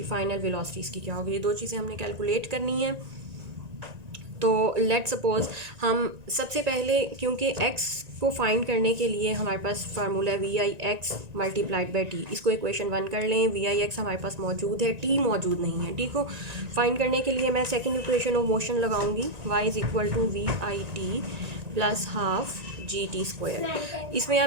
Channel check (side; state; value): left; late; 1.9 ms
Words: इसकी क्या होगी। ये दो चीज़ें हमने कैलकुलेट करनी है। तो लेट सपोज हम सबसे पहले, क्योंकि x को फाइंड करने के लिए हमारे पास फार्मूला है VIX मल्टीप्लाइड बाई टी, इसको इक्वेशन 1 कर लें। VIX हमारे पास मौजूद है, t मौजूद नहीं है। t को फाइंड करने के लिए मैं सेकंड इक्वेशन ऑफ मोशन लगाऊंगी, y is equal to VIT plus half GT²। इसमें